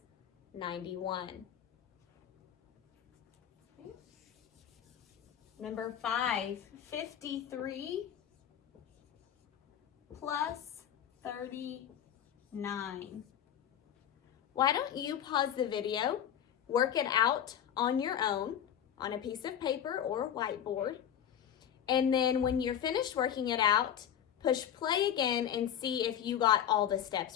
91. Okay. Number 5, 53 plus 39. Why don't you pause the video, work it out on your own on a piece of paper or whiteboard, and then when you're finished working it out, push play again and see if you got all the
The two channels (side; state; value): right; quieter; 9.7 dB